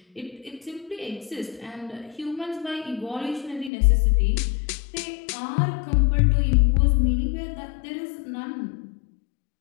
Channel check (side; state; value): right; drops out; at 3.7 s